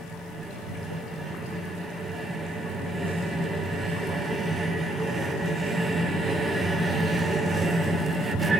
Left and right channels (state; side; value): normal; both; correlation 0.71